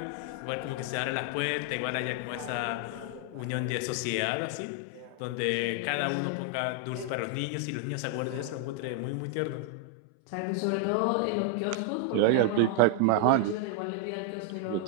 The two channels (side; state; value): both; different; correlation 0.00